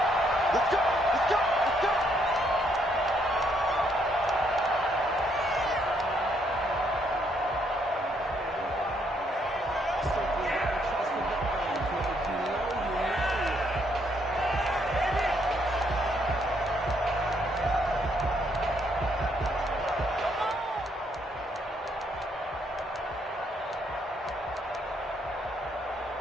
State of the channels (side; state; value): both; normal; correlation 0.71